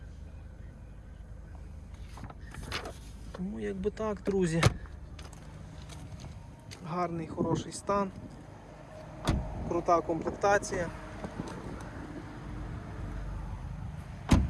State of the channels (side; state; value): both; identical; correlation 1.00